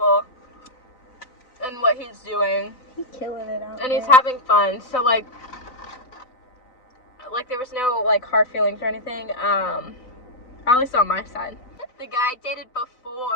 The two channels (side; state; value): right; late; 3.9 ms